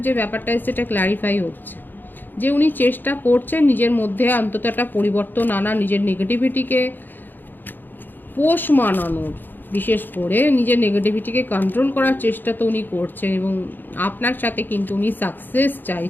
যে ব্যাপারটা এসছে, এটা ক্ল্যারিফাই হচ্ছে যে উনি চেষ্টা করছেন নিজের মধ্যে অন্তত একটা পরিবর্তন আনা, নিজের নেগেটিভিটিকে পোষ মানানোর, বিশেষ করে নিজের নেগেটিভিটিকে কন্ট্রোল করার চেষ্টা তো উনি করছেন এবং আপনার সাথে কিন্তু উনি সাকসেস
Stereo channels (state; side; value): late; right; 0.091 ms